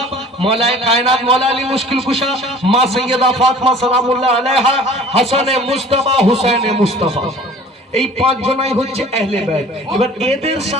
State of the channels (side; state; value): both; normal; correlation 0.47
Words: মওলায়ে কায়নাত মওলা আলী মুশকিল কুশা, মা সাইয়্যিদা ফাতেমা সালামুল্লাহ আলাইহা, হাসানে মুস্তাফা, হুসাইনে মুস্তাফা, এই পাঁচজনাই হচ্ছে আহলে বাইত। এবার এদের